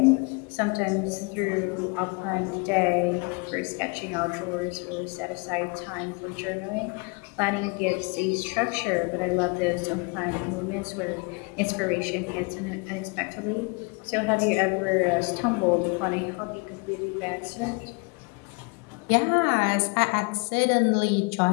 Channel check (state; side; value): quieter; right; 31.4 dB